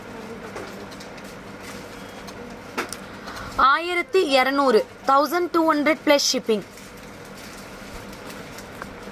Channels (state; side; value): identical; both; correlation 1.00